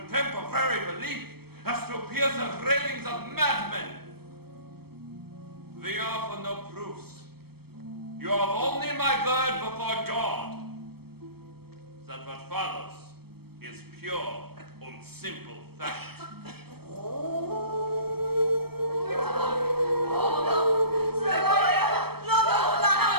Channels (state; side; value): late; left; 0.96 ms